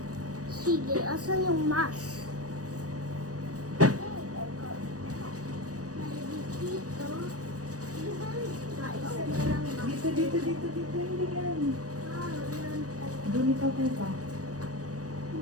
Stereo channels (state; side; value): late; left; 0.67 ms